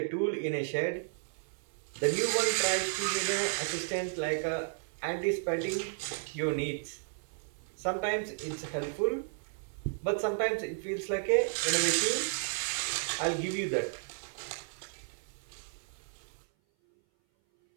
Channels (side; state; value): left; silent; 56 dB below the other